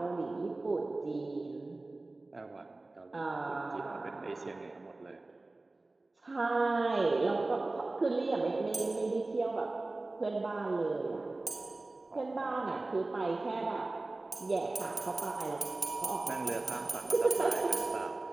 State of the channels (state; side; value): quieter; left; 3.1 dB